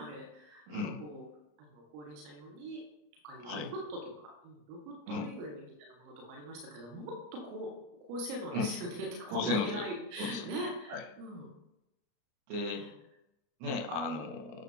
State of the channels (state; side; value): late; left; 34 ms